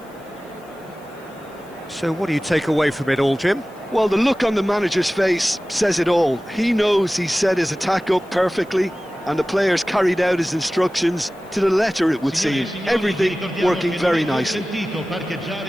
So what do you take away from it all, Jim? Well, the look on the manager's face says it all. He knows he set his attack up perfectly, and the players carried out his instructions to the letter, it would seem. Everything working very nicely.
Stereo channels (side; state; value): left; noise; hiss, 29 dB below the sound